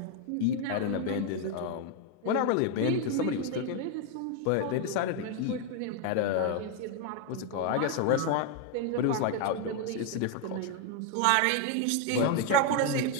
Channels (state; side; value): different; both; correlation 0.01